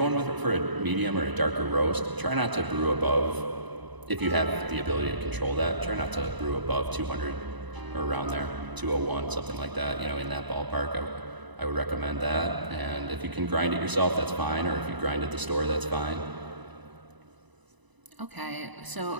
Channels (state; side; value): late; left; 1.0 ms